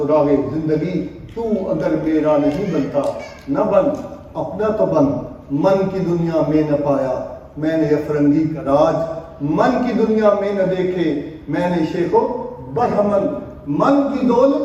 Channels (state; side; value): identical; both; correlation 1.00